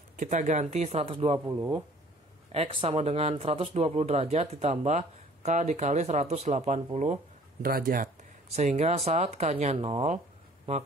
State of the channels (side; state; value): both; normal; correlation 0.53